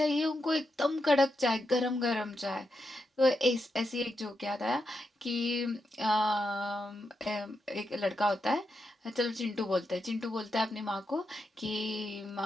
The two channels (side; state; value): both; normal; correlation 0.85